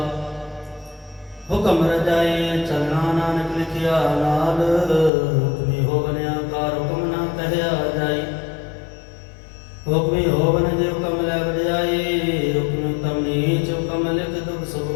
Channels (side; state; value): right; drops out; at 5.1 s